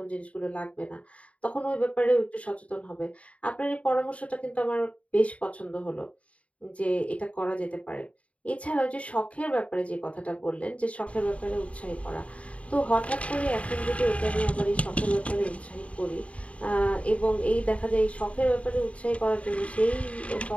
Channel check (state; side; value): late; right; 0.065 ms